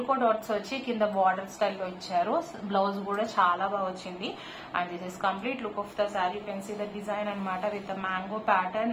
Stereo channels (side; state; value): both; identical; correlation 1.00